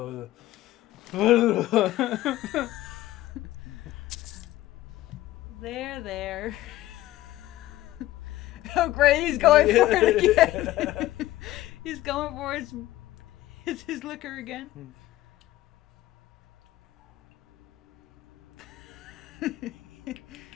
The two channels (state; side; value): quieter; right; 15.7 dB